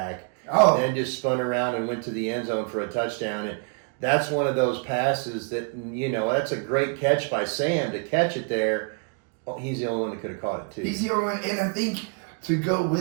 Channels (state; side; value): quieter; left; 38.8 dB